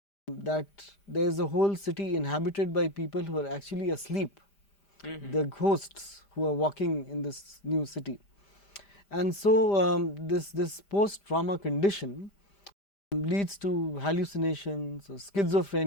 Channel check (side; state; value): right; late; 5.0 ms